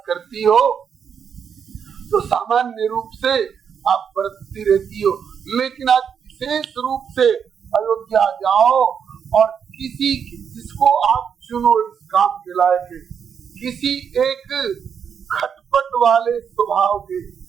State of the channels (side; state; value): left; quieter; 7.3 dB